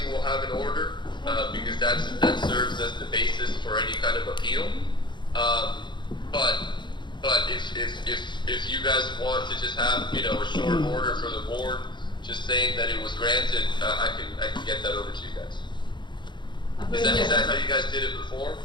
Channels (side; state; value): right; late; 0.22 ms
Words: we'll have an order, because that serves as the basis for any kind of appeal. But if you guys want to just have, you know, a short order for the board, just saying that it was granted, I can get that over to you guys. Is that how you guys did it before?